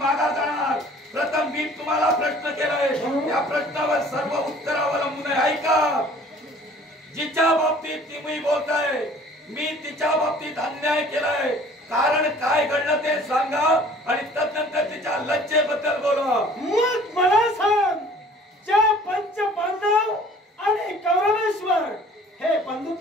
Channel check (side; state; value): both; normal; correlation 0.51